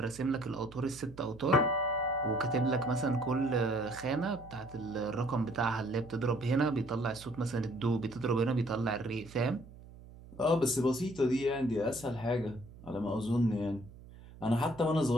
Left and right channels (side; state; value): right; noise; hum, 19 dB below the sound